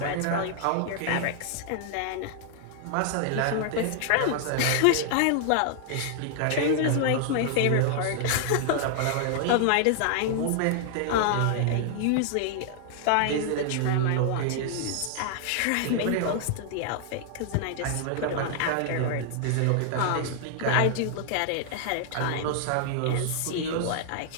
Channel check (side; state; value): both; different; correlation -0.01